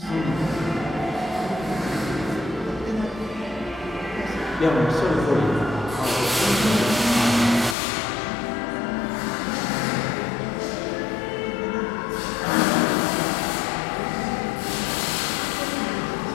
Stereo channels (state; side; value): drops out; right; at 7.8 s